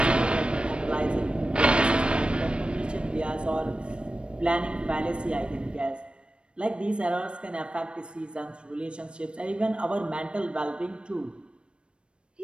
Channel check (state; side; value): late; left; 0.057 ms